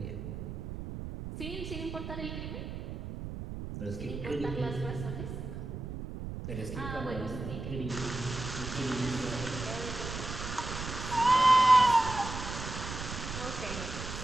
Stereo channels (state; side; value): noise; right; rumble, 7 dB below the sound